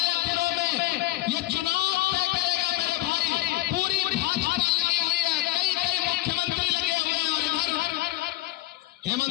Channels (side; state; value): right; quieter; 17.8 dB